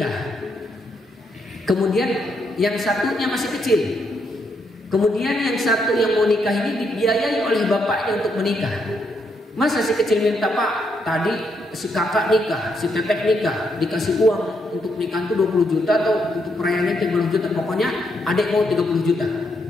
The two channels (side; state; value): both; normal; correlation 0.77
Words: kemudian yang satunya masih kecil, kemudian yang satu yang mau nikah ini dibiayai oleh bapaknya untuk menikah. Masa si kecil minta, Pak, tadi si kakak nikah, si teteh nikah, dikasih uang untuk nikah itu 20 juta atau untuk perayaannya 30 juta, pokoknya adik mau 30 juta.